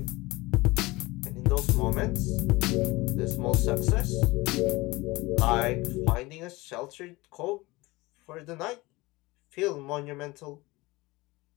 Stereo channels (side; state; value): right; quieter; 21.6 dB